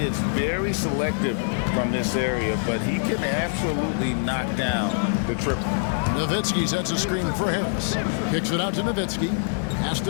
is very selective from this area, but he can absolutely knock down the triple. Nowitzki sets a screen for Harris. Kicks it out to Nowitzki. Pass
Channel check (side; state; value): right; silent; digital silence